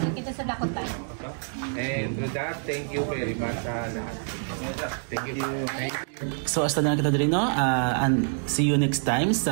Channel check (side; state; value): left; silent; digital silence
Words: kita sa dakot tayo. And with that, thank you very much sa lahat. Thank you. So hasta na kita diri, no? And see you next time